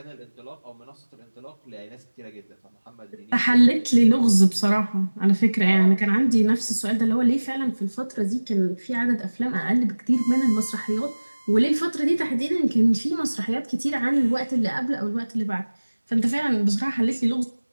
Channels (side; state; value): both; inverted; correlation -1.00